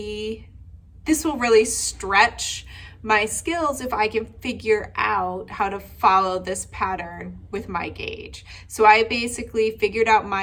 really stretch my skills if I can figure out how to follow this pattern with my gauge. So I basically figured out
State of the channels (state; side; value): identical; both; correlation 1.00